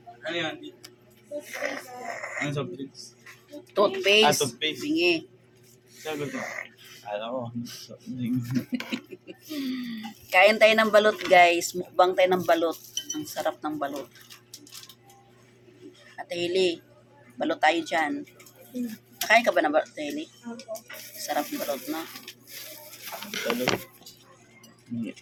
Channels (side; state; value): both; identical; correlation 1.00